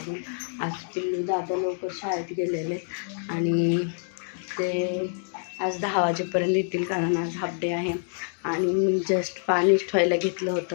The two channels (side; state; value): right; silent; 60 dB below the other